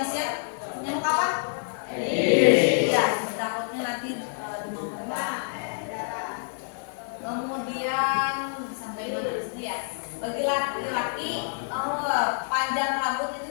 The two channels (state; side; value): silent; right; 60 dB below the other